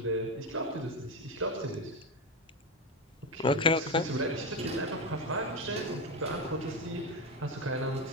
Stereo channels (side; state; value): both; normal; correlation 0.14